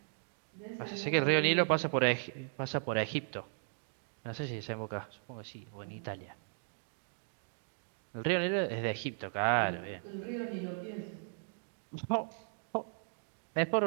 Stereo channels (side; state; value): left; silent; digital silence